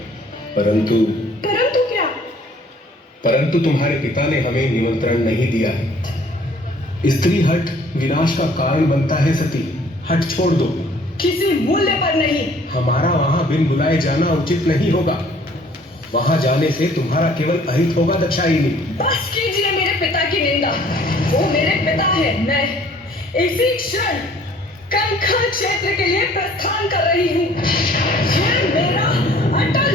परंतु क्या? परंतु तुम्हारे पिता ने हमें निमंत्रण नहीं दिया है। स्त्री हट विनाश का कारण बनता है सती, हट छोड़ दो। किसी मूल्य पर नहीं। हमारा वहां बिन बुलाए जाना उचित नहीं होगा। वहां जाने से तुम्हारा केवल अहित होगा दक्षायिनी। बस कीजिए मेरे पिता की निंदा। वो मेरे पिता है। मैं इसी क्षण कंखल क्षेत्र के लिए प्रस्थान कर रही हूँ। यह मेरा अटल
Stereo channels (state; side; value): normal; both; correlation 0.56